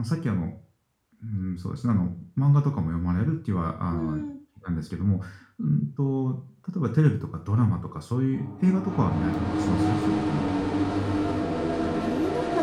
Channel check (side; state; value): both; identical; correlation 1.00